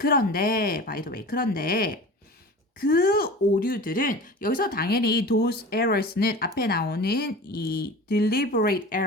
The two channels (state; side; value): normal; both; correlation 0.36